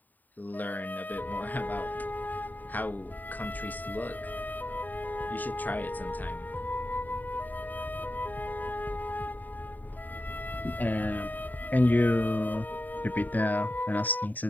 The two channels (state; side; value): late; right; 0.086 ms